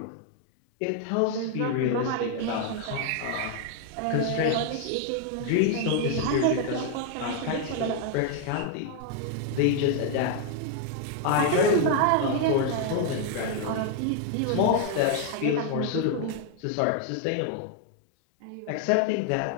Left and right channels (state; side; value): different; both; correlation 0.00